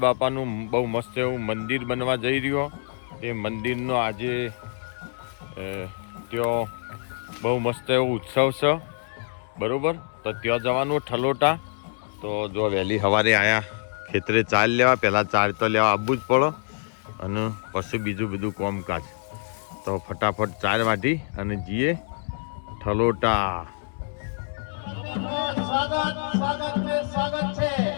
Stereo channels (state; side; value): silent; right; 61 dB below the other